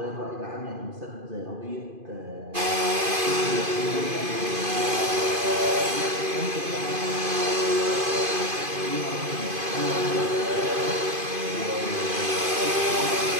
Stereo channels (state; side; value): late; left; 2.5 ms